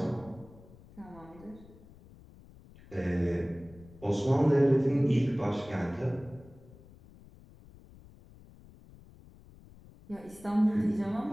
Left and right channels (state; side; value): noise; left; rumble, 22 dB below the sound